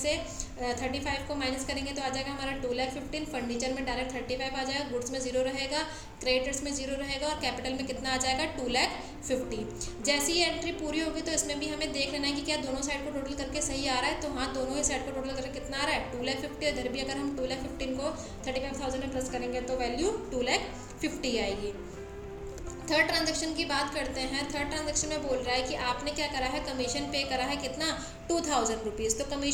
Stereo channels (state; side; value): identical; both; correlation 1.00